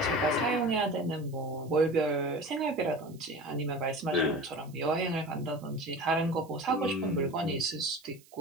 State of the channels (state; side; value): noise; right; hiss, 27 dB below the sound